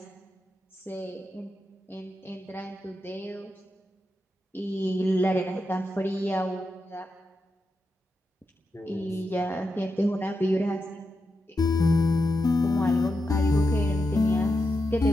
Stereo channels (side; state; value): both; normal; correlation 0.87